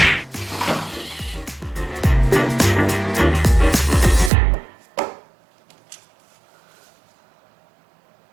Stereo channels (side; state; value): left; drops out; at 4.3 s